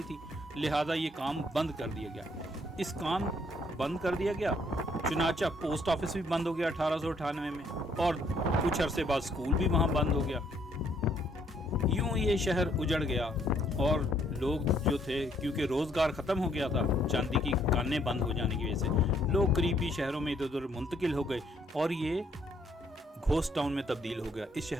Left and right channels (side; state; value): both; normal; correlation 0.67